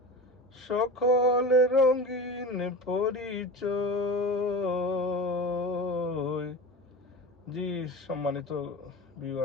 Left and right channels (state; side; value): normal; both; correlation 0.30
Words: সকল রঙিন পরিচয়। জি সম্মানিত